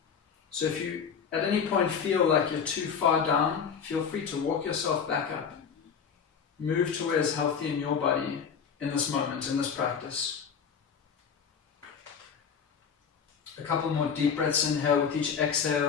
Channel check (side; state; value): right; quieter; 6.7 dB